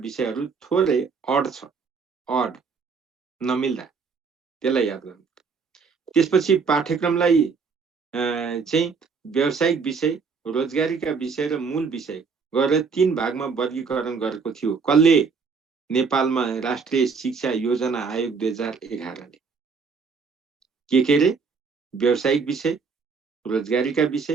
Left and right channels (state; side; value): quieter; left; 5.2 dB